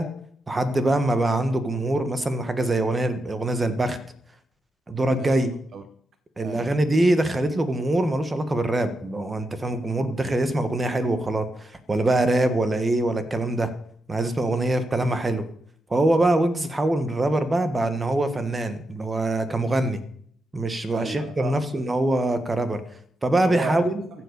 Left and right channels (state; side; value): normal; both; correlation 0.86